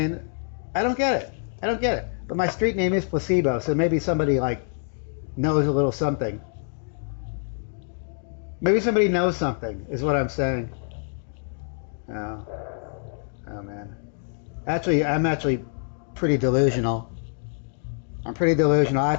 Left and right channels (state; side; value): silent; right; 61 dB below the other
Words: I don't get it. I don't get it. But my street name is Placebo, so maybe somebody like knows a little something. Maybe somebody knows something, is what I'm saying. Oh, oh man. Actually, I'm actually pretty delusional. I'm pretty delusional. I